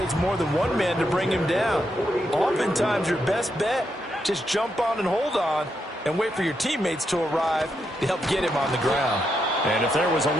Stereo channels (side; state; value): both; normal; correlation 0.81